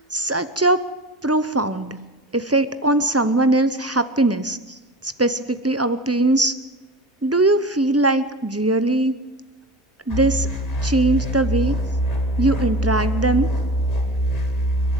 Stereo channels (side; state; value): both; normal; correlation 0.32